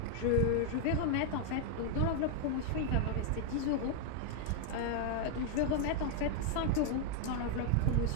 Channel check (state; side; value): different; both; correlation 0.00